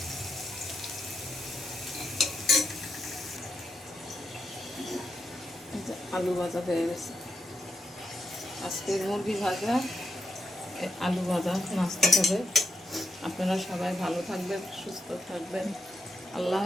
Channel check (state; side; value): normal; both; correlation 0.84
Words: আলু ভাজা হয়ে গেছে। আজকে মুরগি ভাজা, আলু ভাজা নাস্তা হবে। আপনারা সবাই ভালো থাকবেন, সুস্থ থাকবেন। আল্লাহ